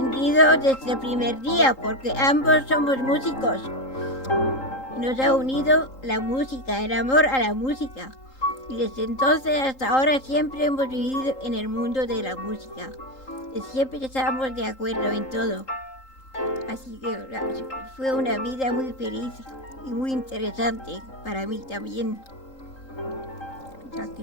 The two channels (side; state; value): right; late; 3.8 ms